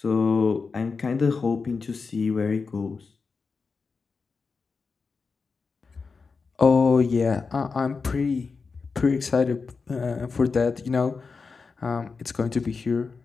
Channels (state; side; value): quieter; right; 4.7 dB